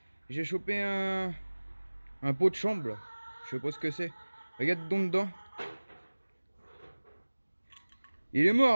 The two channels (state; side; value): inverted; both; correlation -1.00